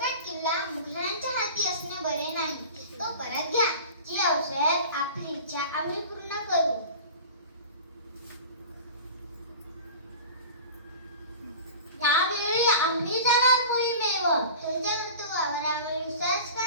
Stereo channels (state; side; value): inverted; both; correlation -0.37